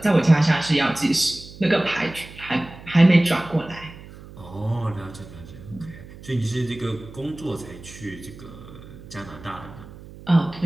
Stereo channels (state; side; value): noise; right; hum, 17 dB below the sound